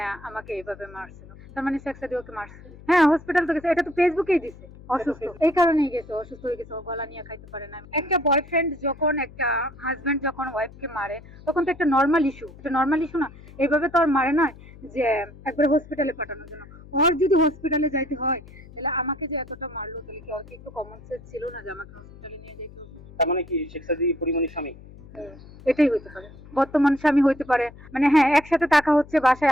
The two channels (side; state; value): left; noise; hum, 19 dB below the sound